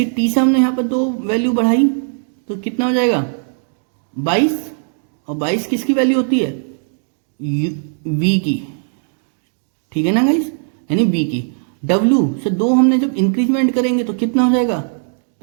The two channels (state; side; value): silent; left; digital silence